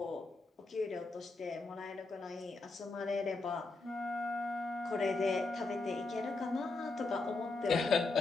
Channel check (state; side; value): quieter; right; 3.5 dB